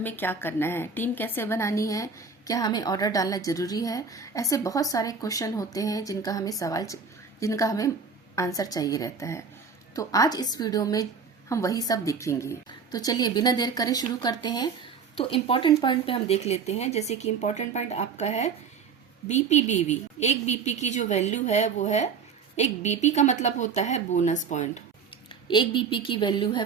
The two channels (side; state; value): left; quieter; 5.6 dB